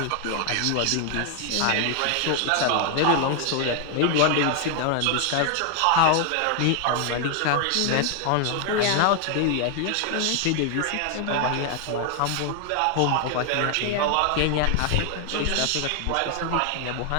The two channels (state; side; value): different; both; correlation 0.00